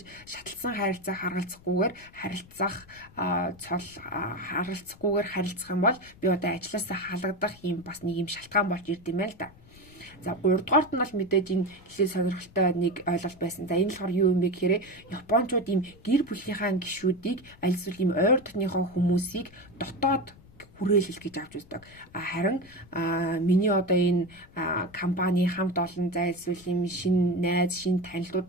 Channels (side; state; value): left; noise; rumble, 24 dB below the sound